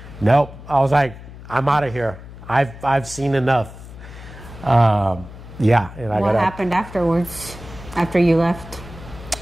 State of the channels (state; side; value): noise; left; hum, 15 dB below the sound